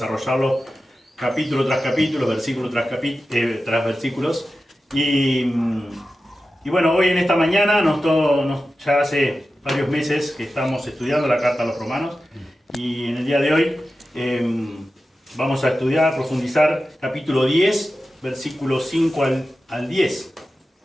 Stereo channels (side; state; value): both; normal; correlation 0.93